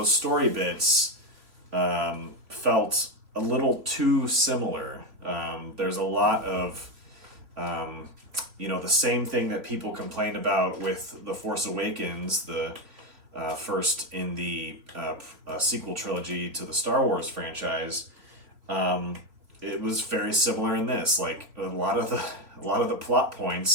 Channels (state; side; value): late; left; 3.5 ms